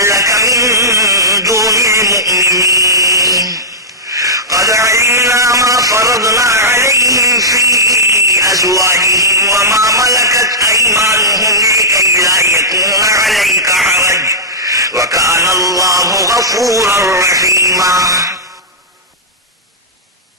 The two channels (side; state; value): both; normal; correlation -0.13